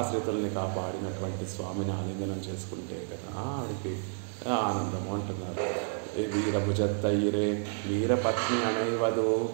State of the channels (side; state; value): left; silent; digital silence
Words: కాపాడినటువంటి స్వామిని ఆలింగనం చేసుకుంటే కదా ఆవిడికి ఆనందము అంటున్నారు. వీరభుజత్తైరే వీరపత్ని అణైవదు